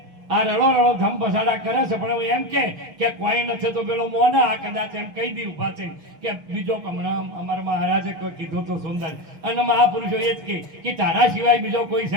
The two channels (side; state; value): left; late; 6.3 ms